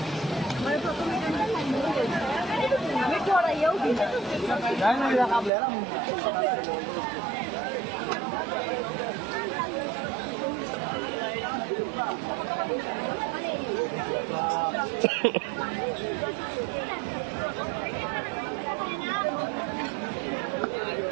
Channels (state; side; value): drops out; left; at 5.5 s